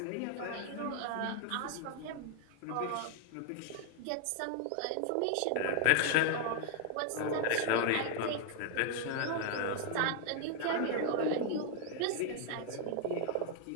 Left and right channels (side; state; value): both; different; correlation 0.00